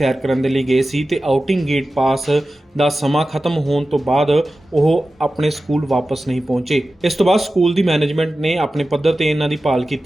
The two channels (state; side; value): normal; both; correlation 0.94